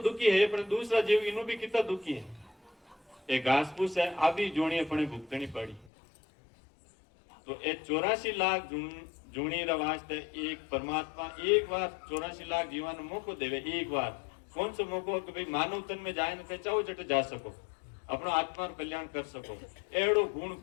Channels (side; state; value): right; drops out; at 5.9 s